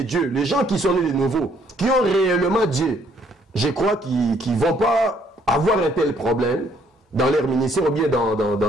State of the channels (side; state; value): both; normal; correlation 0.66